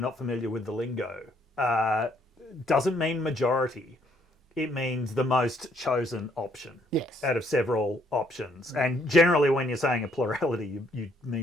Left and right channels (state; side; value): normal; both; correlation 0.68